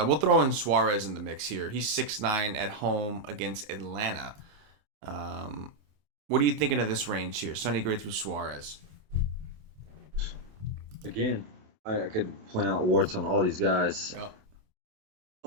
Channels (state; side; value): late; left; 28 ms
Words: throw in Suarez in the mix here. He's 6-9 at home against Atlanta. What are you thinking of this range here? Sonny Gray through Suarez. Again, I could point out warts on all these guys. Yep.